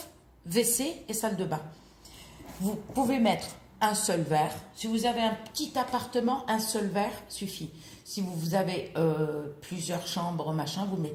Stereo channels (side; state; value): both; identical; correlation 1.00